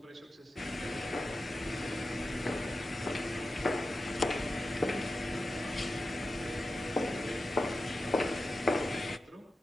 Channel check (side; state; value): both; normal; correlation 0.92